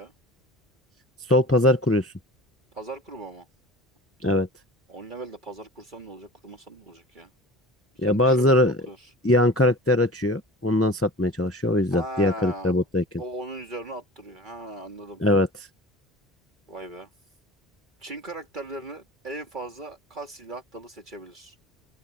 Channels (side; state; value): both; normal; correlation 0.38